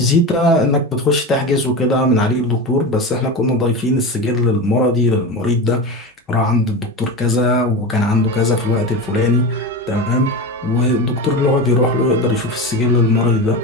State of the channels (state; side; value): normal; both; correlation 0.23